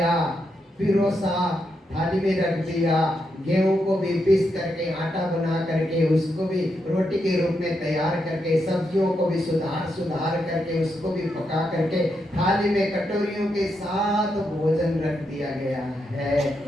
पिरोसा, थाली में रख दिया। गेहूं को भी पीस करके आटा बना करके उसको भी रोटी के रूप में तैयार करके, सब्जियों को भी सुधार करके उसको भी पका करके थाली में कटोरियों के साथ भोजन रख दिया गया है।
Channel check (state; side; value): normal; both; correlation 0.82